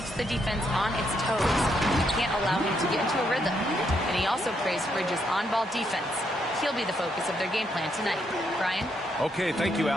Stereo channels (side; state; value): both; normal; correlation 0.76